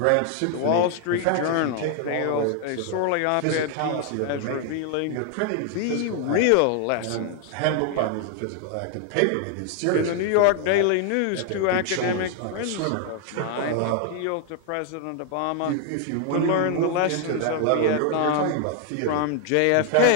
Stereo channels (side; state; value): both; different; correlation 0.00